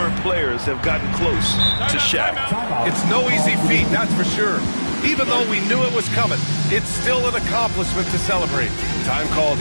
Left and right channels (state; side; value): inverted; both; correlation -1.00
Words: players have gotten close to Shaq. It's no easy feat, that's for sure. Even though we knew it was coming, it's still an accomplishment to celebrate. Time called